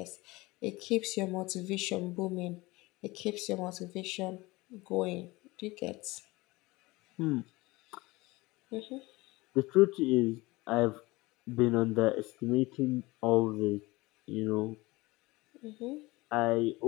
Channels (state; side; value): quieter; right; 21.6 dB